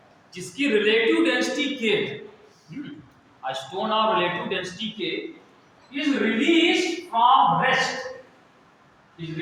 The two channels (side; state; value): both; identical; correlation 1.00